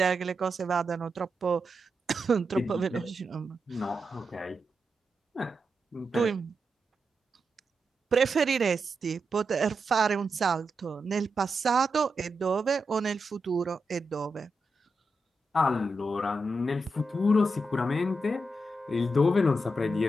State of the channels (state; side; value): normal; both; correlation 0.86